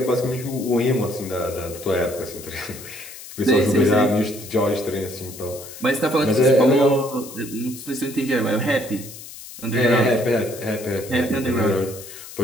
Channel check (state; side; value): noise; left; hiss, 14 dB below the sound